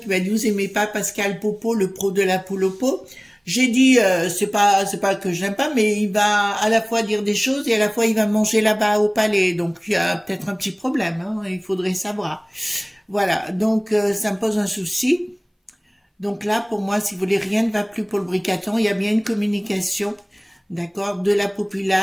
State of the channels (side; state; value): both; identical; correlation 1.00